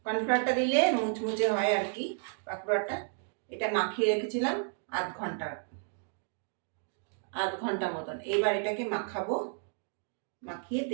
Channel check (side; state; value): left; silent; 56 dB below the other